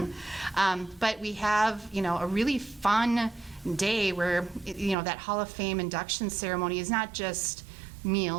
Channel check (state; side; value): drops out; left; at 5.0 s